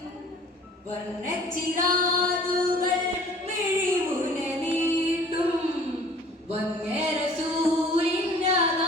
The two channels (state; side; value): normal; both; correlation 0.50